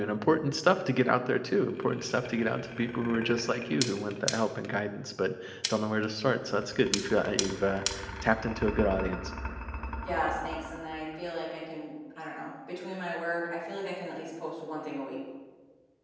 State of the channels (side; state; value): both; identical; correlation 1.00